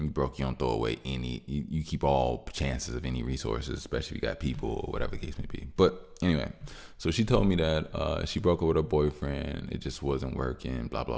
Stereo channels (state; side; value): identical; both; correlation 1.00